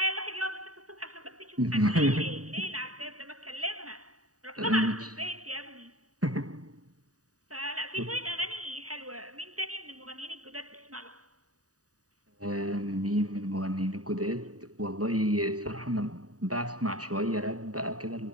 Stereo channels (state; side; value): late; left; 0.67 ms